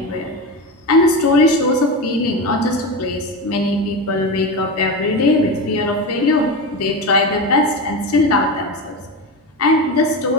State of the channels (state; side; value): normal; both; correlation 0.20